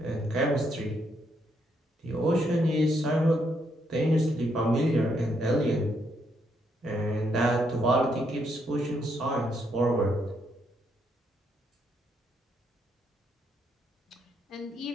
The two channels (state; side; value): normal; both; correlation 0.75